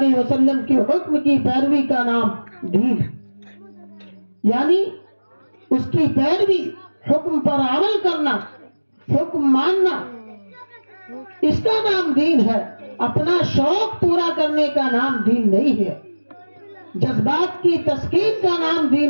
وسلم کے حکم کی پیروی کا نام دین، یعنی اس کی پیروی، حکم پر عمل کرنا، حکم ماننا، اس کا نام دین ہے۔ اپنا شوق پورا کرنے کا نام دین نہیں ہے، جذبات کی تسکین کا نام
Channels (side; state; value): both; inverted; correlation -1.00